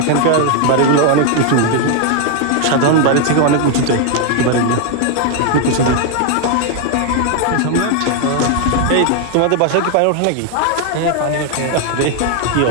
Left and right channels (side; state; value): both; different; correlation 0.01